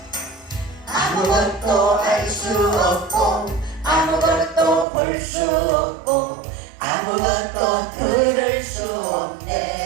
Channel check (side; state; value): left; drops out; at 4.9 s